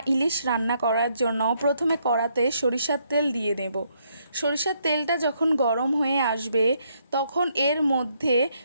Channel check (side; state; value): both; inverted; correlation -0.73